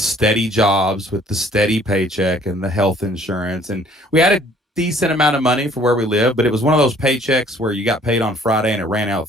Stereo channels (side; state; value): both; normal; correlation 0.57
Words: jobs with the steady paycheck and the health insurance. And we had a decent amount of money for where we live, but it was one of those paychecks where you got paid on Friday and it ran out